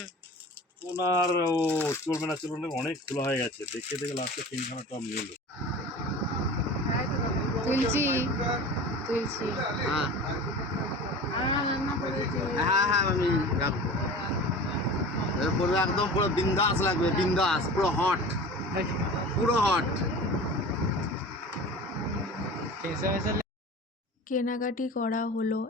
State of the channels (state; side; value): normal; both; correlation 0.36